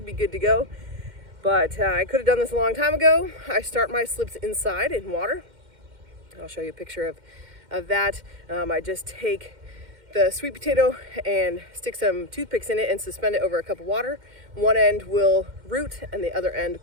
be good to go. But I could have done this a long time ago. I start my slips inside in water. I'll show you a picture of that. I just take the sweet potato and stick some toothpicks in it and suspend it over a cup of water. One end will root and the other end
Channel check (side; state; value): left; late; 2.1 ms